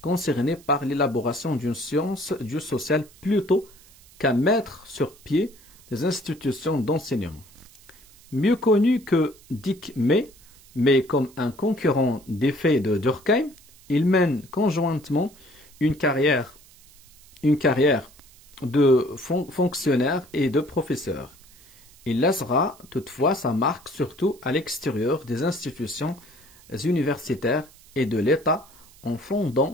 concernés par l'élaboration d'une science du social plutôt qu'à mettre sur pied des institutions d'enseignement. Mieux connu que Dick May, mais comme un concurrent d'effet de Durkheim, il mène conjointement une carrière de fonctionnaire et de professeur. Il laissera toutefois sa marque surtout à l'extérieur des institutions universitaires et de l'État en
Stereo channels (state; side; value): noise; right; hiss, 25 dB below the sound